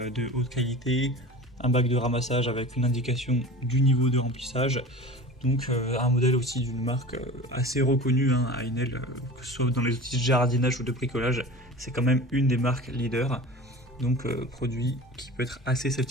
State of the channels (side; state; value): both; normal; correlation 0.36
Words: haute qualité, un bac de ramassage avec une indication du niveau de remplissage. Donc un modèle aussi d'une marque assez reconnue, Einel, que ce soit dans les outils de jardinage ou de bricolage, c'est quand même une des marques leaders. Donc produit qui peut être assez